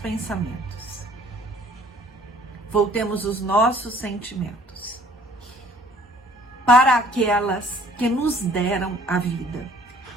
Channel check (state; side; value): normal; both; correlation 0.56